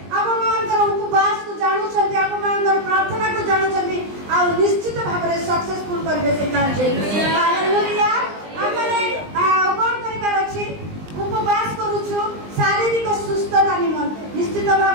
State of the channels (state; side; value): late; left; 20 ms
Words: ଆପଣମାନଙ୍କର ଉପବାସକୁ ଜାଣୁଛନ୍ତି, ଆପଣମାନଙ୍କର ପ୍ରାର୍ଥନାକୁ ଜାଣୁଛନ୍ତି ଆଉ ନିଶ୍ଚିତ ଭାବରେ ସକ୍ସେସଫୁଲ କରିବେ ସେ କାର୍ଯ୍ୟ। ହାଲେଲୁୟା। ଆମେ କଣ କରିବାର ଅଛି? ଉପବାସ କରୁଛୁ ଶାରୀରିକ ସୁସ୍ଥତା ନିମନ୍ତେ। ନିଶ୍ଚିତ